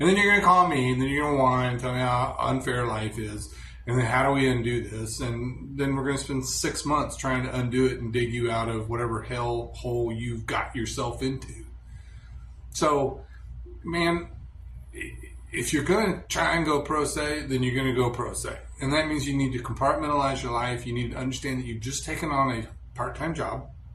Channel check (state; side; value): identical; both; correlation 1.00